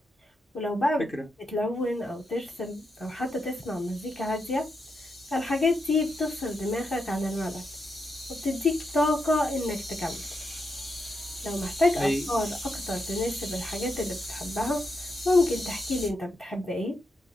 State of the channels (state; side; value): normal; both; correlation 0.84